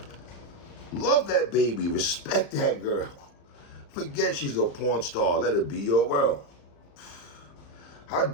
love that baby. Respect that girl. Forget she's a porn star. Let her be your world. How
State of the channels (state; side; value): late; right; 35 ms